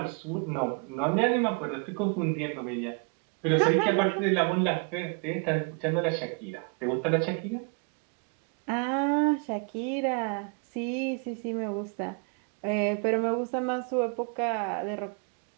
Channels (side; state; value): left; quieter; 35.5 dB